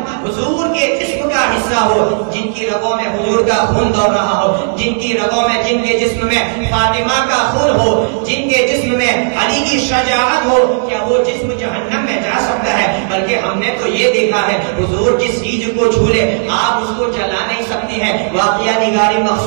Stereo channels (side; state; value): left; silent; digital silence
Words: حضور کے جسم کا حصہ ہو، جن کی رگوں میں حضور کا خون دوڑ رہا ہو، جن کی رگوں میں جن کے جسم میں فاطمہ کا خون ہو، جن کے جسم میں علی کی شجاعت ہو، کیا وہ جسم جہنم میں جا سکتا ہے؟ بلکہ ہم نے تو یہ دیکھا ہے حضور جس چیز کو چھو لے آپ اس کو جلا نہیں سکتی ہیں. واقعہ نگاری